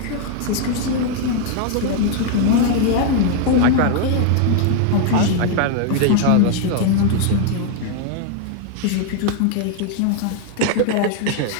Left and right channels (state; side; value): different; both; correlation 0.00